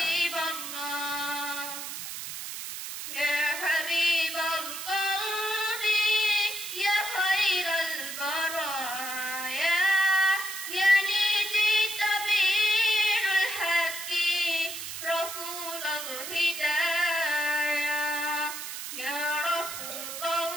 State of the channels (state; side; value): noise; right; hiss, 7 dB below the sound